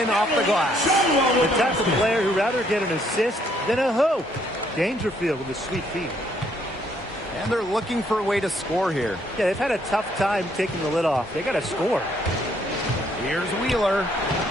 off the glass. The type of player who'd rather get an assist than a hoop. Dangerfield with a sweet feed. And they're looking for a way to score here. Yeah, they've had a tough time taking the lid off. They got to score. Here's Wheeler.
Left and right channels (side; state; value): both; normal; correlation 0.68